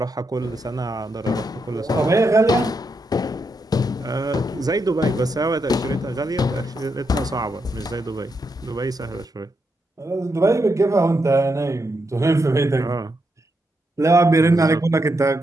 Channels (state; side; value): normal; both; correlation 0.82